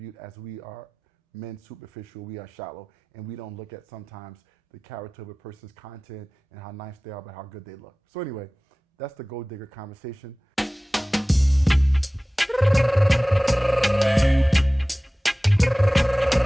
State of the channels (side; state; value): both; normal; correlation 0.98